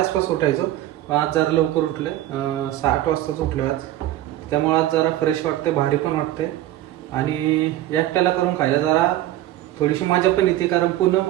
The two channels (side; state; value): left; quieter; 14.2 dB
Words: आसपास उठायचो. आज जरा लवकर उठले, 8 वाजताच उठले आज. त्यामुळे आज जरा फ्रेश वाटते, भारी पण वाटते आणि एकट्याला करून खायला जरा थोडीशी मजा पण येते, कारण